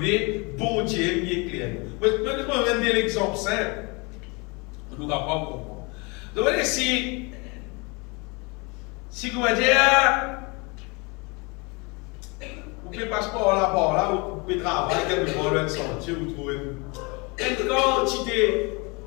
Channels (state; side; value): quieter; right; 28.8 dB